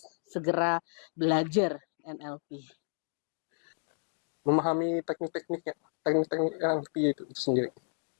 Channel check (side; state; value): right; silent; digital silence